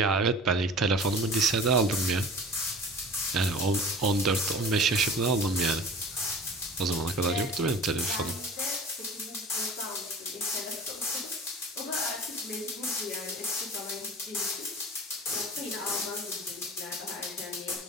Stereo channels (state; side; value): normal; both; correlation 0.41